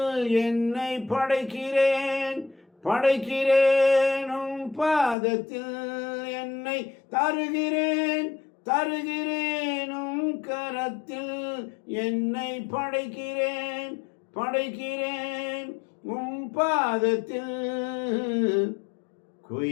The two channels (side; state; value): right; drops out; at 5.2 s